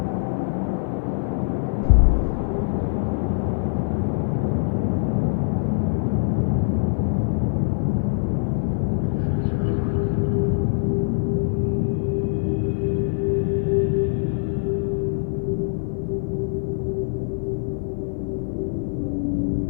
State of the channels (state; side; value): silent; right; 60 dB below the other